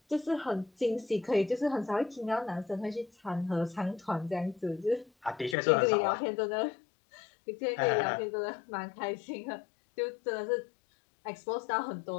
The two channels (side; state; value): right; drops out; at 5.6 s